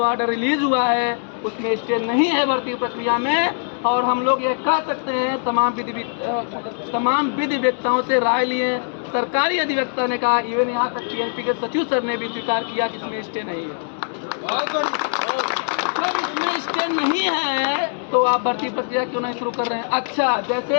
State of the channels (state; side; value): silent; right; digital silence